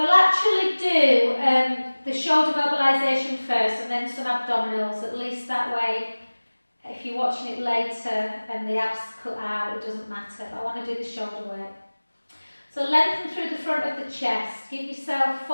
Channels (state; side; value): inverted; both; correlation -1.00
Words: actually do the shoulder mobilisation first and then some abdominals, at least that way if you're watching it later and the abs cut out, it doesn't matter. I want to do the shoulder work. So lengthen through the front of the chest. Give yourself